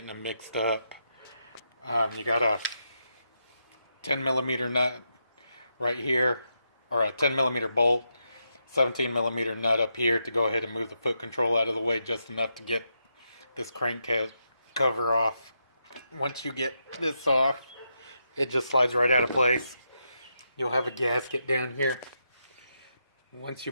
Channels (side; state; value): both; inverted; correlation -0.83